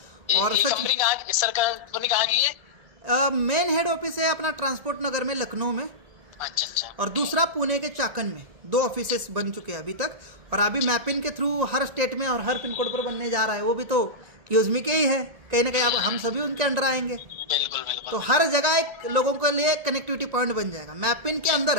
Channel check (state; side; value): late; left; 1.7 ms